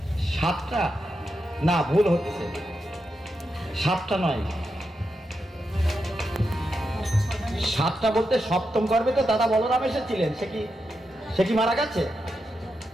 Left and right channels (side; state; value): both; normal; correlation 0.86